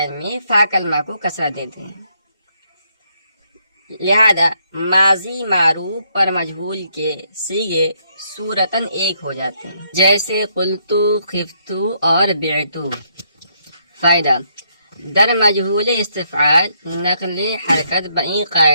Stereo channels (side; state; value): both; inverted; correlation -0.73